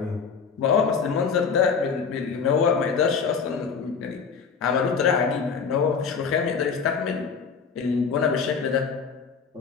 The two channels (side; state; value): right; quieter; 5.8 dB